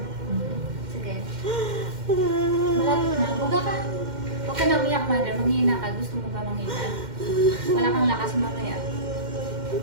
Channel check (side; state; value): left; late; 2.1 ms